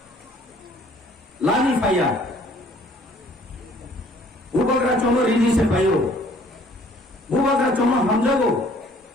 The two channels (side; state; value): both; normal; correlation 0.57